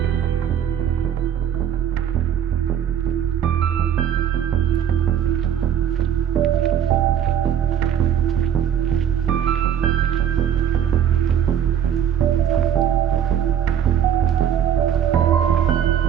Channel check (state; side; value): quieter; left; 9.2 dB